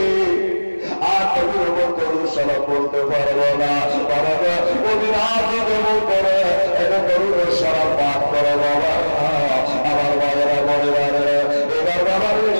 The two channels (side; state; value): both; inverted; correlation -1.00